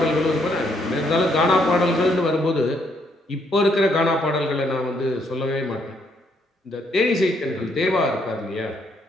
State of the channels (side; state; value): both; normal; correlation 0.72